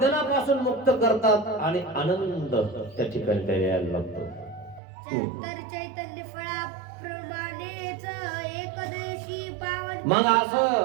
मुक्त करतात आणि आनंद त्या ठिकाणी त्या यायला लागतो. तर चैतन्य फळाप्रमाणेच एकदेशी पावन. मग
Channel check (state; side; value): drops out; left; at 4.8 s